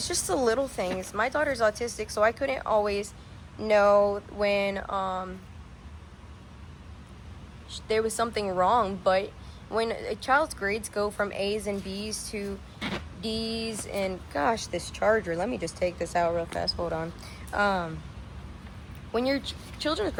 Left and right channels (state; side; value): identical; both; correlation 1.00